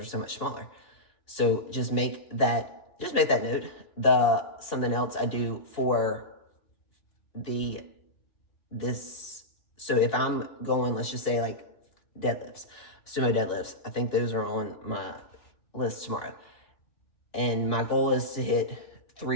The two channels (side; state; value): right; late; 2.9 ms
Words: so much smaller. So just make that note. Something else I do for so if I'm going, let's just say like deadlifts, sumo deadlifts, I think those are on my list tomorrow. And my goal is to hit